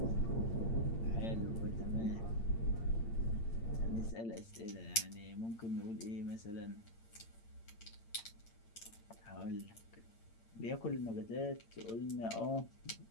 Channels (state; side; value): late; right; 8.8 ms